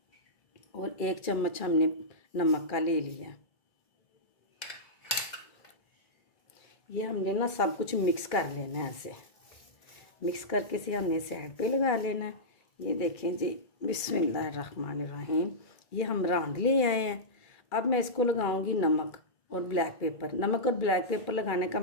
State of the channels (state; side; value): late; right; 2.3 ms